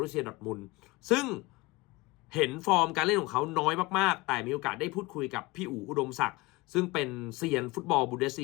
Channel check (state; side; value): quieter; right; 22.4 dB